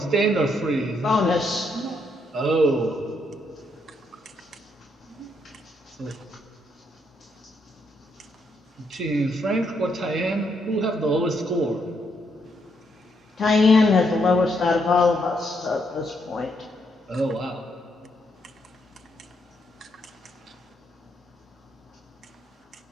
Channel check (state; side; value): normal; both; correlation 0.76